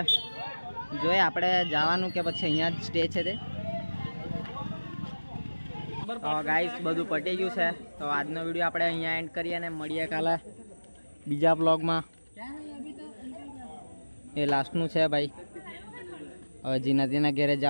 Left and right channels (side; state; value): both; inverted; correlation -1.00